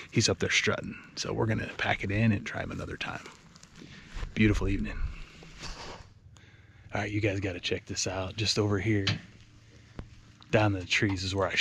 he's up there strutting. So we're gonna pack it in and try him another time. Beautiful evening. All right, you guys gotta check this out. Just over here, down the trees is where I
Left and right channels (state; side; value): identical; both; correlation 1.00